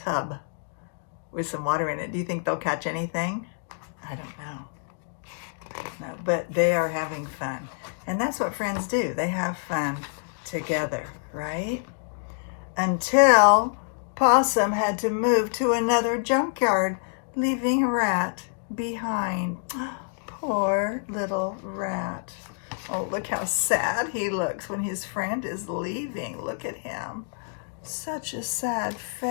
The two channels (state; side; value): silent; right; digital silence